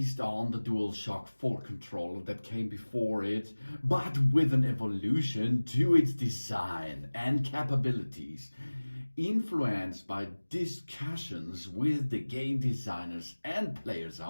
on the DualShock 4 controller that came before it, but with an evolution to its design and capabilities, influenced by discussions with the game designers and players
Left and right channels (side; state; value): both; inverted; correlation -1.00